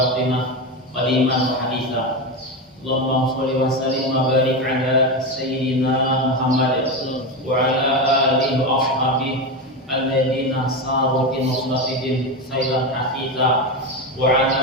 qadiman wa haditha. Allahumma shalli wa sallim wa barik ala sayyidina Muhammad wa ala alihi wa ashabihi alladhina saru bi nusratihim sayran hafidha wa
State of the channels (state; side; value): normal; both; correlation 0.16